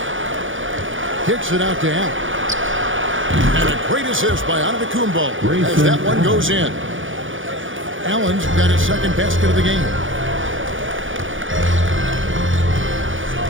Kicks it out to Allen. And a great assist by Antetokounmpo as that one goes in. Allen's got his second basket of the game.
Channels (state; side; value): late; left; 0.57 ms